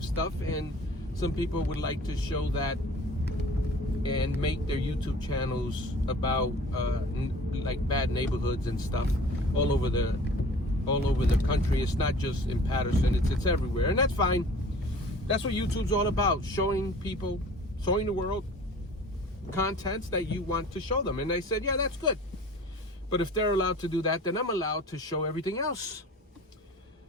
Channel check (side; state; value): both; normal; correlation 0.45